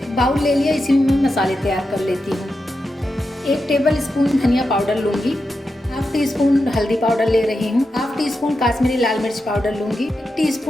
बाउल ले लिया, इसी में मैं मसाले तैयार कर लेती हूँ। 1 टेबल स्पून धनिया पाउडर लूँगी, 1/2 टीस्पून हल्दी पाउडर ले रही हूँ, 1/2 टीस्पून काश्मीरी लाल मिर्च पाउडर लूँगी, 1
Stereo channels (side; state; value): both; normal; correlation 0.88